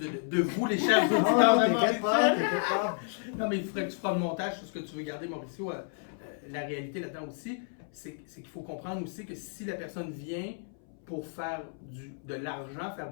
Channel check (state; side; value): silent; right; 57 dB below the other